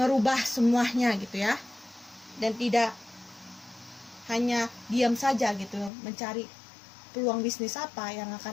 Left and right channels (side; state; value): right; drops out; at 5.9 s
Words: semuanya gitu ya. Dan tidak hanya diam saja gitu, mencari peluang bisnis apa yang